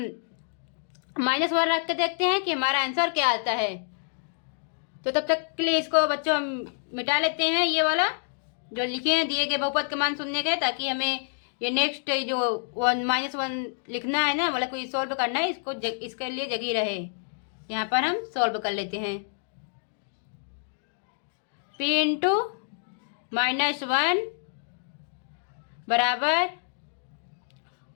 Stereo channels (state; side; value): silent; right; digital silence